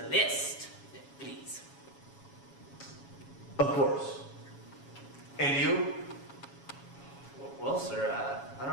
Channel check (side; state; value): right; late; 7.2 ms